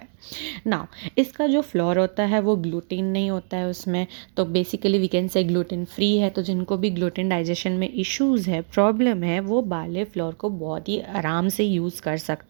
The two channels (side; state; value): left; silent; digital silence